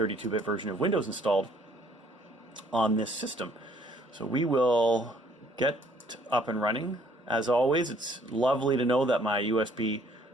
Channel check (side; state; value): both; normal; correlation 0.62